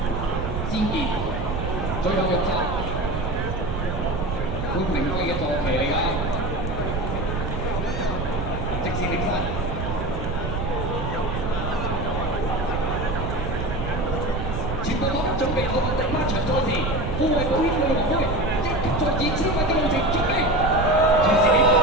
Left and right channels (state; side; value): noise; right; rumble, 3 dB below the sound